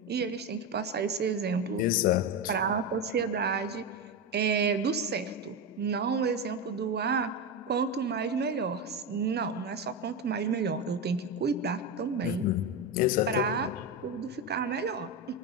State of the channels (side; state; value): both; normal; correlation 0.15